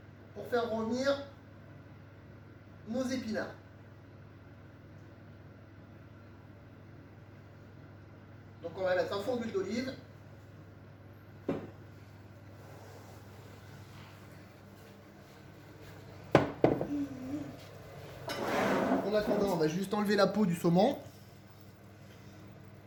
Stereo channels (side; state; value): both; identical; correlation 1.00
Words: Pour faire revenir nos épinards. Donc on va mettre un fond d'huile d'olive. En attendant, on va juste enlever la peau du saumon.